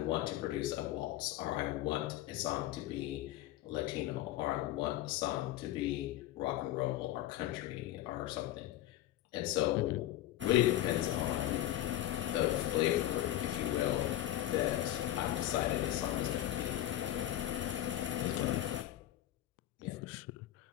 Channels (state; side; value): quieter; right; 13.8 dB